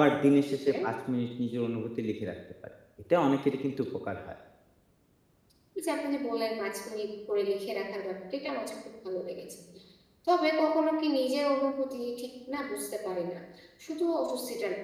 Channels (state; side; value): identical; both; correlation 1.00